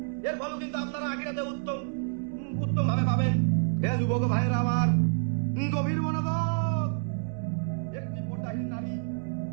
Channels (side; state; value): left; silent; digital silence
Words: এর ফলে কিন্তু আপনারা আখিরাতে উত্তম ভাবে পাবেন। হে যুবক ভাইয়েরা আমার, গভীর মনোযোগ। একটি পর্দাহীন নারী,